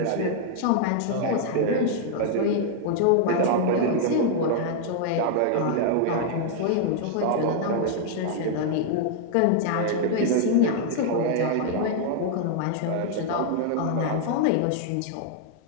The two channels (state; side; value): different; both; correlation 0.00